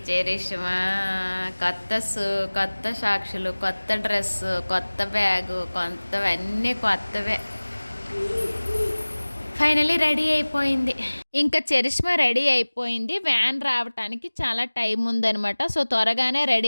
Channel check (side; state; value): both; inverted; correlation -1.00